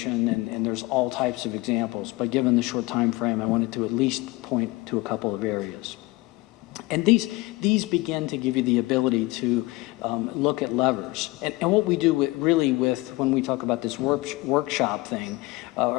and there's all types of examples, but given the short time frame, I wanted to at least point to a couple of areas. And these begin to give you the ability to look at levers. And what we do when we talk about this workshop thing,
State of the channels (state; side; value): quieter; right; 21.8 dB